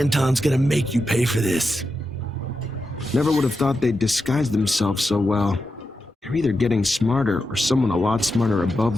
gonna make you pay for this. Never would have thought they'd disguise themselves so well. They're either getting smarter, or someone a lot smarter above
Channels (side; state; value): both; normal; correlation 0.88